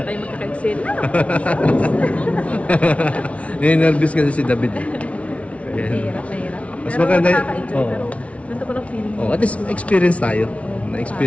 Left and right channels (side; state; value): right; late; 0.064 ms